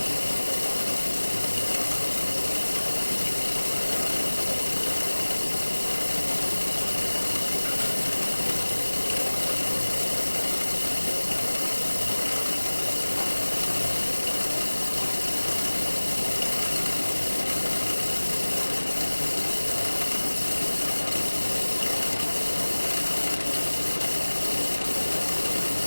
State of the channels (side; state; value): both; inverted; correlation -1.00